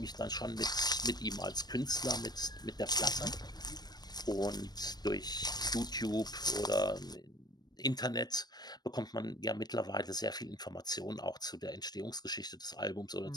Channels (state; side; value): late; right; 0.19 ms